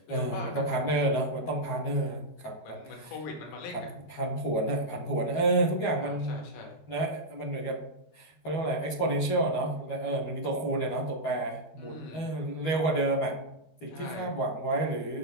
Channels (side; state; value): right; late; 12 ms